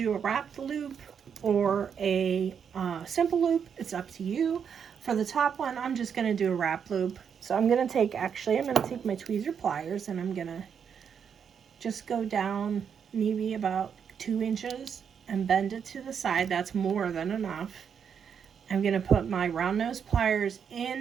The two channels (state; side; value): quieter; left; 7.3 dB